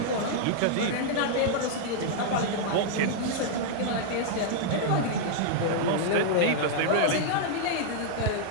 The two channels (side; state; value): both; different; correlation -0.01